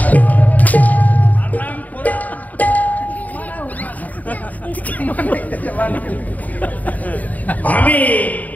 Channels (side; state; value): right; late; 0.076 ms